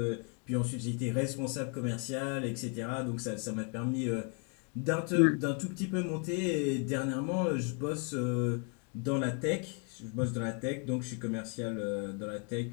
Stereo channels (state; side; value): quieter; right; 37.6 dB